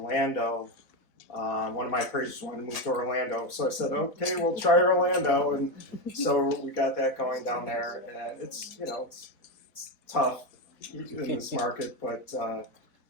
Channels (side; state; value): right; late; 3.9 ms